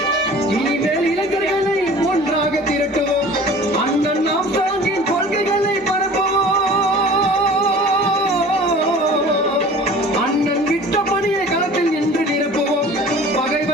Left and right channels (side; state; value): both; normal; correlation 0.44